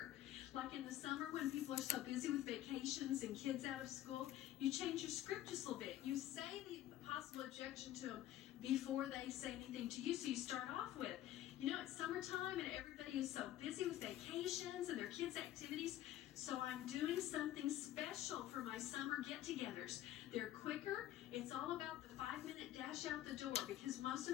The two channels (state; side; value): quieter; right; 13.2 dB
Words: Like in the summer when people are so busy with vacations and kids out of school, you change your script just a little bit. You say the possible objection to them before they say anything to you, so you start off with, you know, it's summertime and everybody is so busy with vacations and their kids' activities, so I'm doing something special for my summer get-togethers. They're quicker. It's all about the 5-minute dash out the door because most